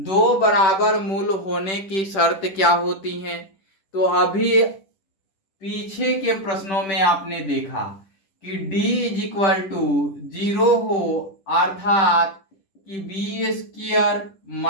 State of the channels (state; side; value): late; right; 10 ms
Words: बराबर मूल होने की शर्त क्या होती है? तो अभी पीछे के प्रश्नों में आपने देखा कि d इज इक्वल टू 0 हो, अर्थात कि बी स्क्वायर